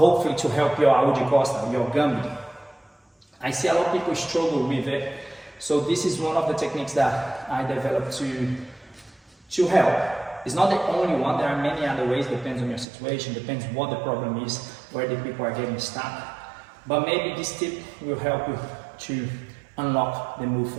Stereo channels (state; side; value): drops out; left; at 12.9 s